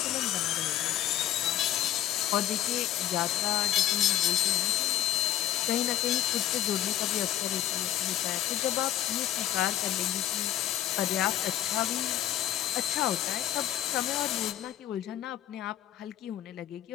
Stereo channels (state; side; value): quieter; right; 12.5 dB